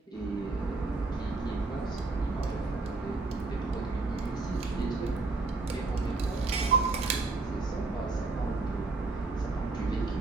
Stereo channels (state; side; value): quieter; left; 3.5 dB